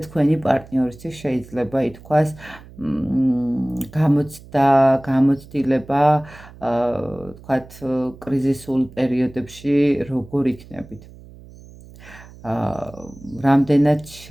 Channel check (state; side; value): noise; right; hum, 20 dB below the sound